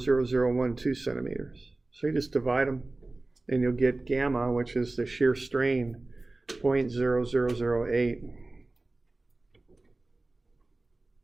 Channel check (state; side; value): quieter; left; 3.0 dB